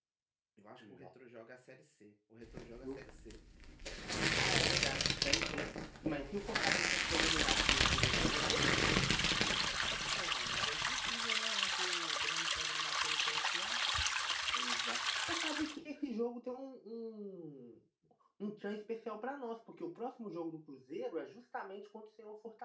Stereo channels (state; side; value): identical; both; correlation 1.00